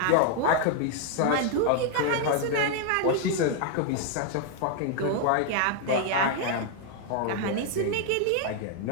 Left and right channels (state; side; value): different; both; correlation 0.00